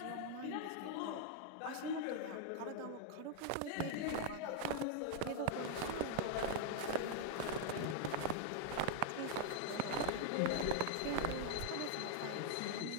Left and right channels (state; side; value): different; both; correlation -0.01